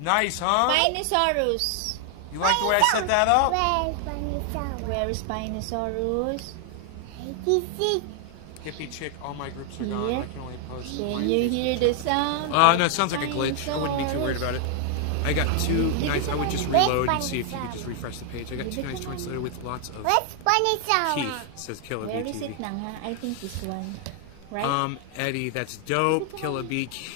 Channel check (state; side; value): different; both; correlation 0.00